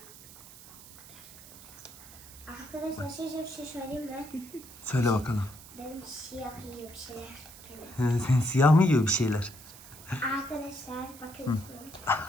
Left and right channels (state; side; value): noise; right; hiss, 18 dB below the sound